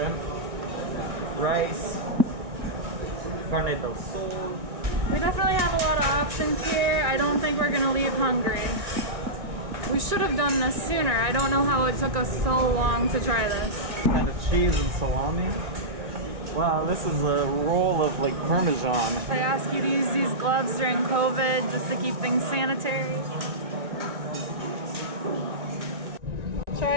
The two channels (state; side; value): late; left; 2.0 ms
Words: rice, carne del sol. We definitely have a lot of options here. I don't think we're gonna leave hungry. We should have done this sooner. I don't know how it took us so long to try this. Kind of cheese and salami. Wow, this is a roll of like Parmesan. I ask you to use these gloves during COVID just to keep things sanitary.